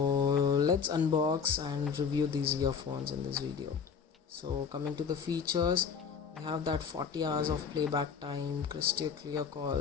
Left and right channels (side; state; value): right; quieter; 6.3 dB